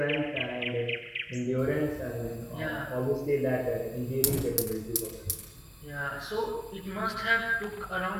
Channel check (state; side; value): identical; both; correlation 1.00